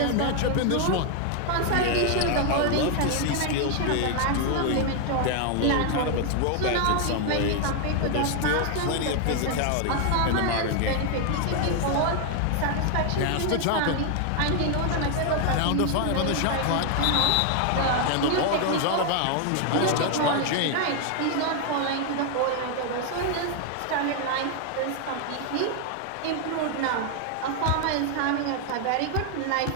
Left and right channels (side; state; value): both; different; correlation 0.00